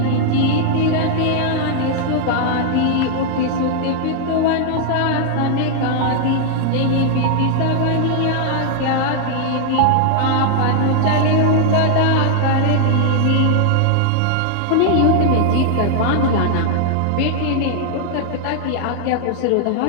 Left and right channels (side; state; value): both; different; correlation 0.00